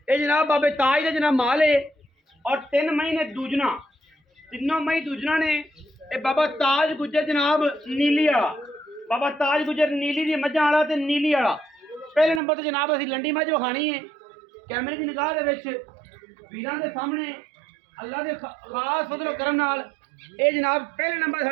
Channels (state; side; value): drops out; left; at 12.4 s